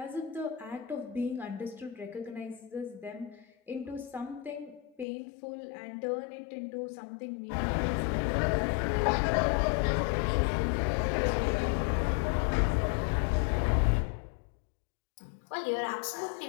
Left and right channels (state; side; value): drops out; right; at 5.1 s